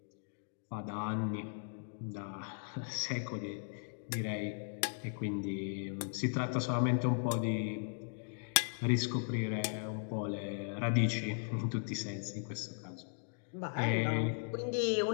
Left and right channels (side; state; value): right; silent; digital silence